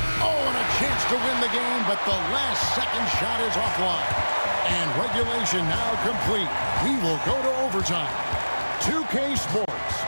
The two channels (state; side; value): inverted; both; correlation -1.00